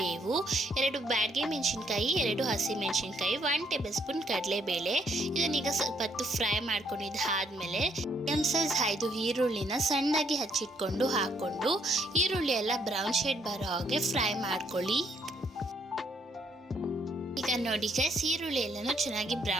2 ಬ್ಯಾಡಗೆ ಮೆಣಸಿನ್ಕಾಯಿ, 2 ಹಸಿ ಮೆಣಸಿನ್ಕಾಯಿ, 1 ಟೇಬಲ್ ಸ್ಪೂನ್ ಕಡಲೆಬೇಳೆ. ಇದನ್ನೀಗ ಸ್ವಲ್ಪ ಹೊತ್ತು ಫ್ರೈ ಮಾಡ್ಕೊಂಡಿದ್ದಾದ್ಮೇಲೆ ಸೈಜ್ 5 ಈರುಳ್ಳಿನ ಸಣ್ಣದಾಗಿ ಹಚ್ಚಿಟ್ಕೊಂಡು ಹಾಕೊಂಡು ಈರುಳ್ಳಿ ಎಲ್ಲ ಬ್ರೌನ್ ಶೇಡ್ ಬರೋ ಹಾಗೆ ಫ್ರೈ ಮಾಡ್ಕೊಳ್ಳಿ. ಈಗ ನೋಡಿ ಗೈಸ್, ಈರುಳ್ಳಿ ಎಲ್ಲನೂ ಚೆನ್ನಾಗಿ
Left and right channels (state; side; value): normal; both; correlation 0.70